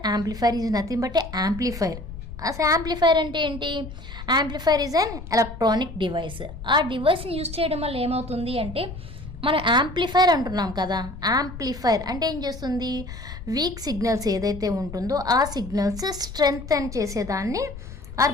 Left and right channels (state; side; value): noise; left; rumble, 12 dB below the sound